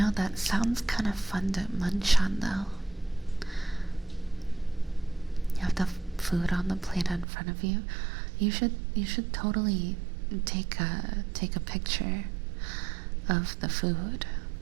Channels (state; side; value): drops out; left; at 7.2 s